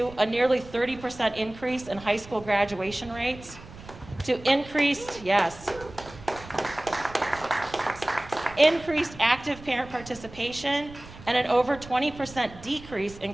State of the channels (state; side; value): noise; right; rumble, 18 dB below the sound